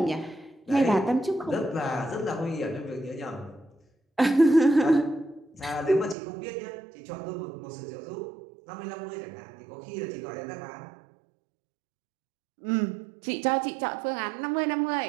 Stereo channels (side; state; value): left; drops out; at 6.2 s